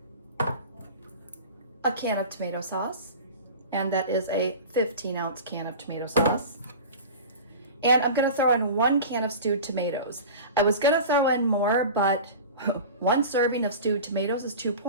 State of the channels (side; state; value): both; inverted; correlation -0.34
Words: A can of tomato sauce, and that is a 15-ounce can of tomato sauce. And I'm going to throw in 1 can of stewed tomatoes. I was going to throw in more, but 1 serving of stewed tomatoes is 2